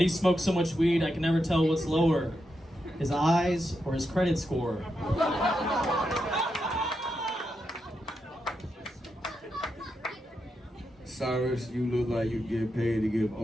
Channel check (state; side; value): normal; both; correlation 0.85